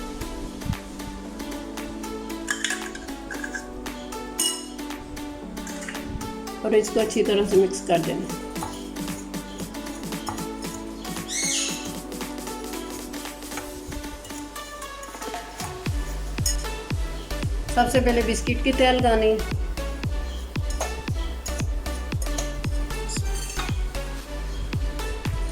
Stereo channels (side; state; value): both; identical; correlation 1.00